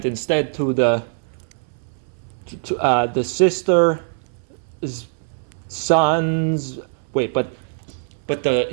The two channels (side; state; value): left; silent; 60 dB below the other